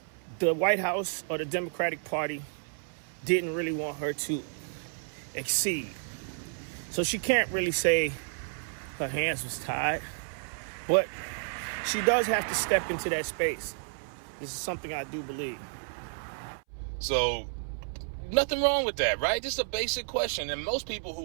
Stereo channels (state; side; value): silent; left; 57 dB below the other